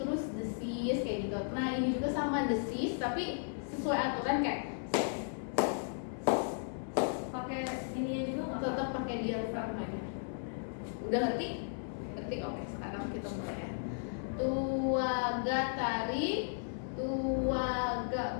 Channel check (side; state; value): right; silent; 54 dB below the other